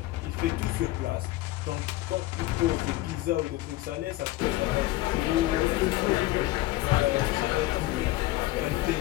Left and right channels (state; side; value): quieter; right; 17.3 dB